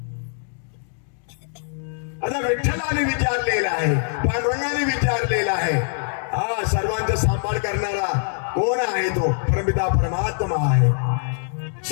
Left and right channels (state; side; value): silent; right; 63 dB below the other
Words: आता विठ्ठलाने विचारलेला आहे, पांडुरंगाने विचारलेला आहे, हा सर्वांचा सांभाळ करणारा कोण आहे? तो परमपिता परमात्मा आहे.